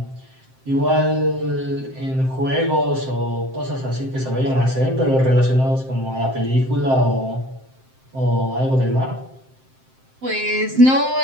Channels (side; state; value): left; late; 7.6 ms